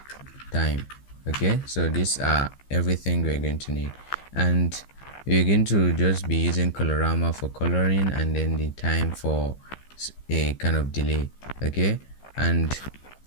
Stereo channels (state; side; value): late; right; 15 ms